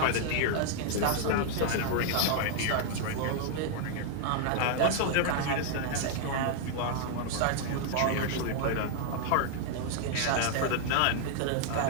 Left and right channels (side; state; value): both; different; correlation 0.00